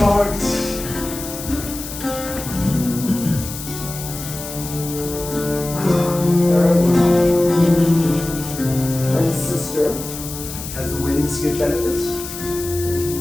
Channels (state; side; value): noise; left; hiss, 10 dB below the sound